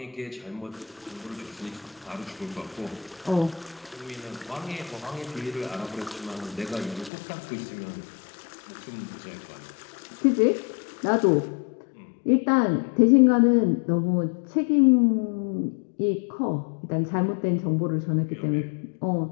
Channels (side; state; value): right; drops out; at 7.1 s